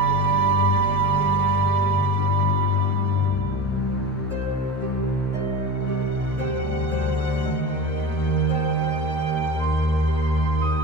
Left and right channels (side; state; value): both; normal; correlation 0.29